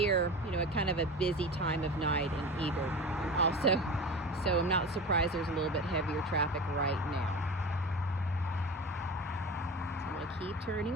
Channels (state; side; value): normal; both; correlation 0.31